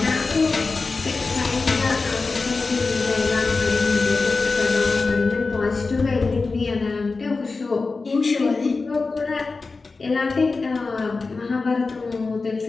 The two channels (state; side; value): quieter; right; 4.0 dB